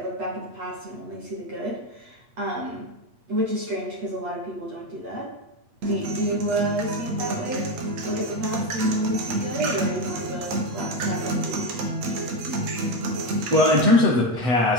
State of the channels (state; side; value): late; left; 8.4 ms